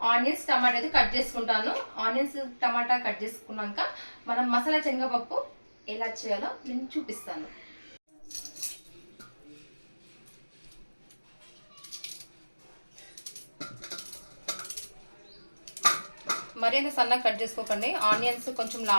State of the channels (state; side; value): inverted; both; correlation -1.00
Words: ఆనియన్స్, టమాటా అయితే కట్ చేసుకుంటాను. ఆనియన్స్, టమాటా కట్ చేసుకున్నాక మనం మసాలా శనగపప్పు ఎలా చేయాలో నేను చూపిస్తాను. మరి అంత సన్నగా కట్ చేసుకోకండి. ఆనియన్స్ కొంచెం